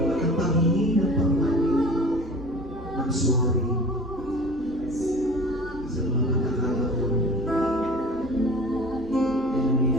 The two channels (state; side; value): noise; right; rumble, 23 dB below the sound